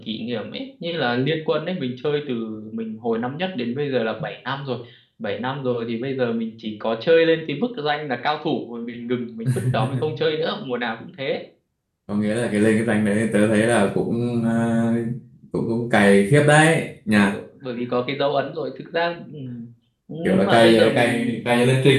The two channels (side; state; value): both; identical; correlation 1.00